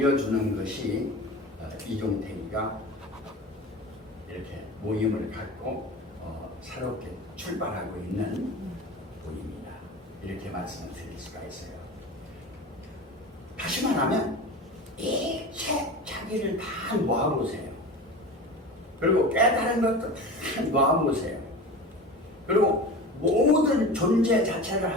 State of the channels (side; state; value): both; normal; correlation 0.32